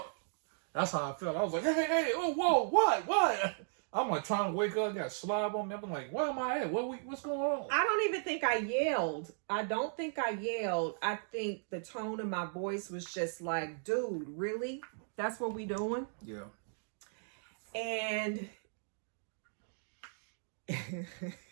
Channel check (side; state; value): left; silent; digital silence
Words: That's how I felt. I was like, hey, oh, whoa, what? I'm like trying to wake up, got slob on me. I'm like, where am I at? What's going on? I don't even think I yelled. I don't think I yelled. I think the tone of my voice was just like, dude, really? That's what we doing? Yeah. And